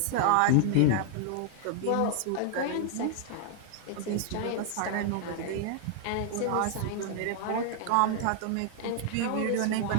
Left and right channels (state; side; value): different; both; correlation 0.00